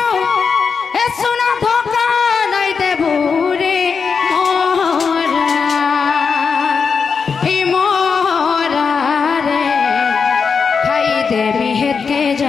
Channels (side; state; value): right; quieter; 5.6 dB